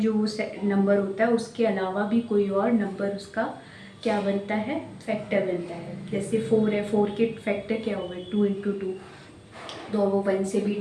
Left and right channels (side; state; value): both; identical; correlation 1.00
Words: नंबर होता है उसके अलावा भी कोई और नंबर उसका क्या बनता है, फैक्टर बनता है। जैसे 4 है, 4 के फैक्टर क्या होगा 2 इंटू 2, तो वो 1 से भी